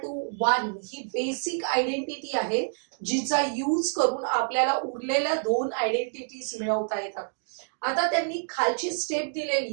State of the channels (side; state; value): left; silent; digital silence